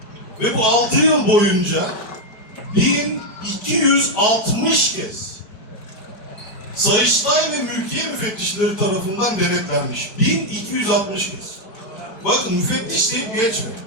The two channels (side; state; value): right; late; 4.5 ms